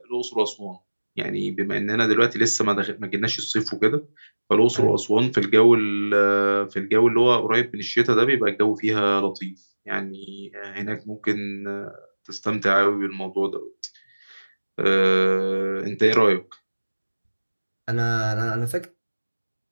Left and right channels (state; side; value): inverted; both; correlation -1.00